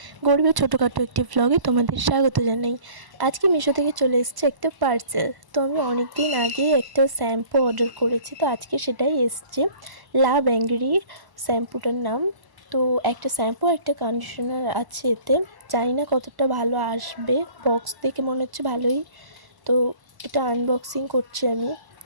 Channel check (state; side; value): late; left; 1.0 ms